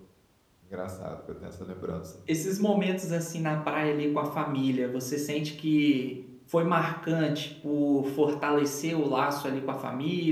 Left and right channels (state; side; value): identical; both; correlation 1.00